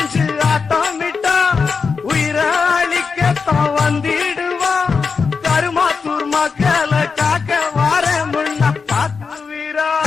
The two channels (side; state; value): right; quieter; 5.2 dB